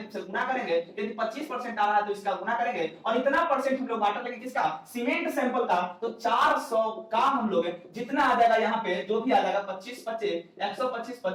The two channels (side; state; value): both; identical; correlation 1.00